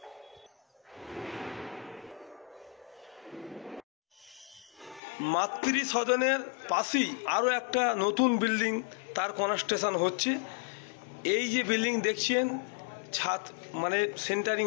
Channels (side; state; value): right; drops out; at 5.0 s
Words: মাতৃ সদনের পাশেই আরও একটা নতুন বিল্ডিং তার কনস্ট্রাকশন হচ্ছে। এই যে বিল্ডিং দেখছেন ছাদ মানে সেন্টারিং